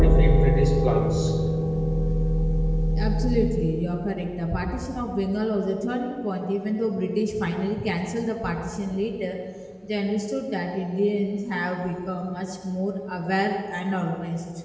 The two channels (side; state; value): both; identical; correlation 1.00